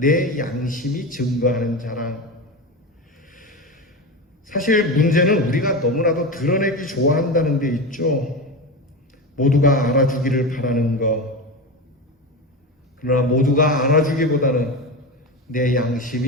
양심이 증거하는 자랑. 사실 문제는 우리가 너무나도 드러내기 좋아한다는 데 있죠. 모두가 알아주기를 바라는 것. 그러나 모두가 알아주기보다는 내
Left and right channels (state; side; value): normal; both; correlation 0.22